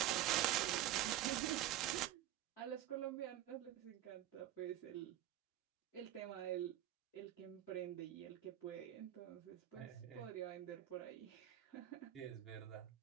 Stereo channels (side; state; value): left; quieter; 13.2 dB